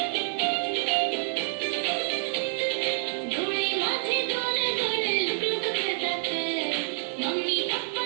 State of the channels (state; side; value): silent; left; digital silence